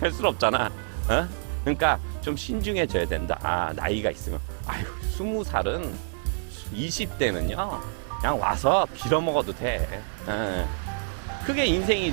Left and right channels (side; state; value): left; silent; digital silence